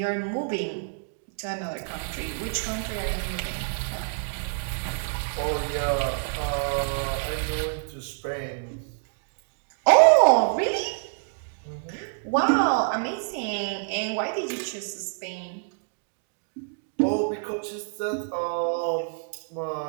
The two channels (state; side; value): silent; left; digital silence